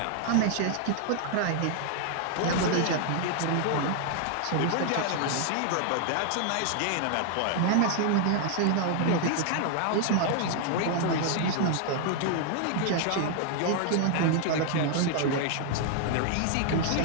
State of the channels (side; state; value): both; different; correlation 0.00